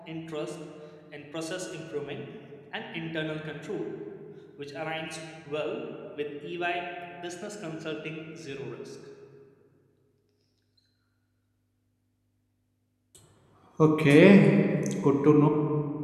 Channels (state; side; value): identical; both; correlation 1.00